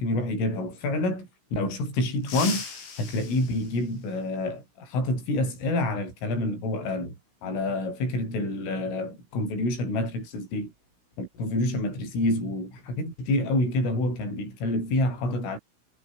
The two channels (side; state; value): right; late; 16 ms